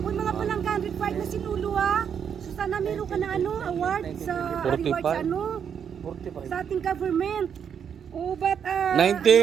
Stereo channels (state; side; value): quieter; left; 7.8 dB